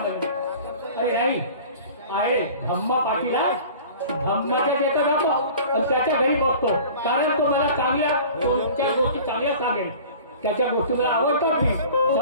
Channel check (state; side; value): inverted; both; correlation -0.43